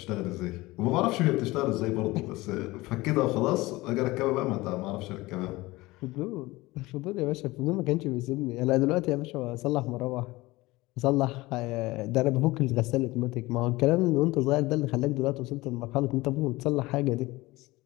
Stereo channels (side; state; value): right; quieter; 20.4 dB